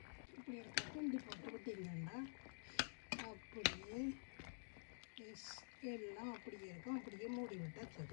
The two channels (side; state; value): right; silent; digital silence